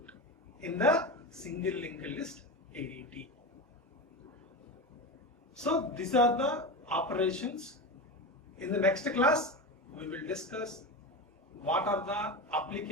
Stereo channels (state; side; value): normal; both; correlation 0.21